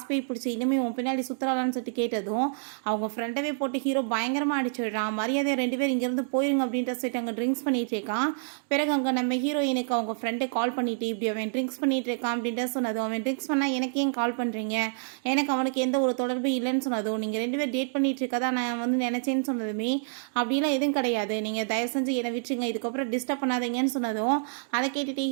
போய் பிடிச்சி இனிமேல் உன் பின்னாடி சுற்றுலான்னு சொல்லிட்டு கேட்டதும் அவங்க ஃப்ரெண்டவே போட்டு ஹீரோ பயங்கரமாக அடிச்சிடுறான். மரியாதையை 2 பேர் இங்கேருந்து போயிருங்க அப்படின்ற சொல்லிட்டு அங்கே ட்ரிங்க்ஸ் பண்ணிட்டு இருக்கான். பிறகு அங்கே நம்ம ஹீரோயினுக்கு அவங்க ஃப்ரெண்டை கால் பண்ணிட்டு இப்படி அவன் ட்ரிங்க்ஸ் பண்ணிட்டு இருக்கான் அப்படின்ற சொன்னதும், அவன் ட்ரிங்க்ஸ் பண்ணால் எனக்கு ஏன் கால் பண்ணுறீங்க, எனக்கு அவனுக்கு எந்த ஒரு தொடர்பும் இல்லைன்னு சொன்னதும், நீங்கள் 2 பேர் டேட் பண்ணிட்டு இருக்கதா நான் வந்து நினச்சேன்னு சொன்னதுமே, அப்படிலாம் எதுவும் கிடையாது, நீங்கள் தயவு செஞ்சு என்னை விட்டுருங்க, இதுக்கப்புறம் டிஸ்டர்ப் பண்ணாதீங்கன்னு சொன்னதும் அதை கேட்டுட்டு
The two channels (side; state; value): left; silent; digital silence